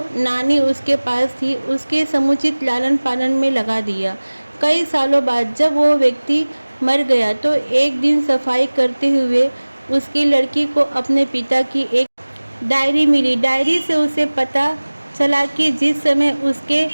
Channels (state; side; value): inverted; both; correlation -1.00